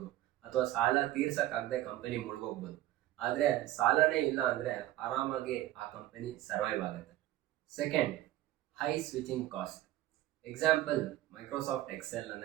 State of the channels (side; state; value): left; quieter; 14.7 dB